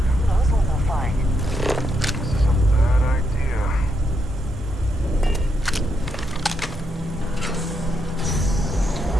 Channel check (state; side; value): normal; both; correlation 0.80